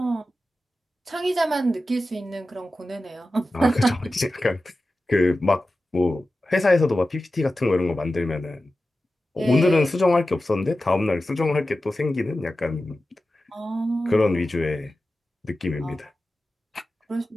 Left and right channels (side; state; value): both; normal; correlation 0.94